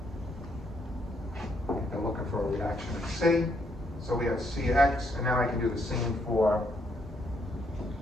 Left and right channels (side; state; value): both; normal; correlation 0.73